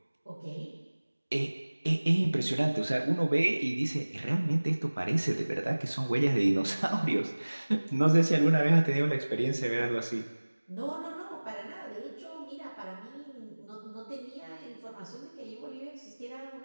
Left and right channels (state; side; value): inverted; both; correlation -1.00